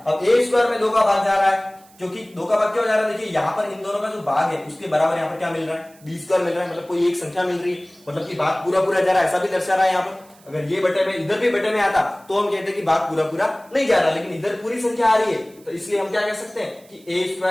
अब a² में 2 का भाग जा रहा है, क्योंकि 2 का भाग क्यों जा रहा है, देखिए यहां पर इन दोनों का जो भाग है उसके बराबर यहां पर क्या मिल रहा है, b² मिल रहा है, मतलब कोई एक संख्या मिल रही है, मतलब कि भाग पूरा पूरा जा रहा है, ऐसा भी दर्शा रहा है यहाँ पर। अगर ये बटे में इधर भी बटे में आता तो हम कहते हैं कि भाग पूरा पूरा नहीं जा रहा, लेकिन इधर पूरी संख्या आ रही है तो इसलिए हम क्या कह सकते हैं कि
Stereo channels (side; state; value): right; noise; hiss, 27 dB below the sound